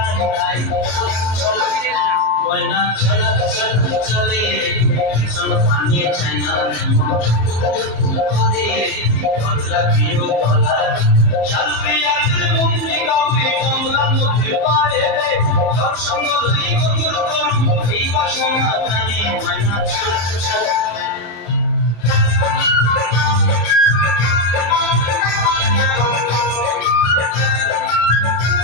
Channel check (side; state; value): right; late; 35 ms